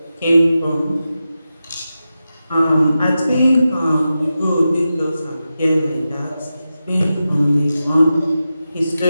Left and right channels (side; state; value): both; inverted; correlation -0.91